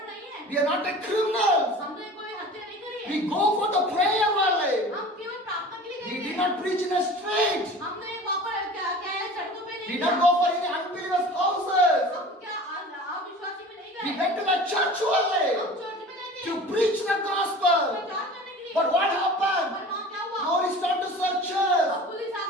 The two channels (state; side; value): normal; both; correlation 0.40